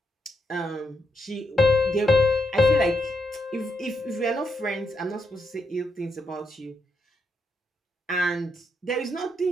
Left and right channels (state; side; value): normal; both; correlation 0.80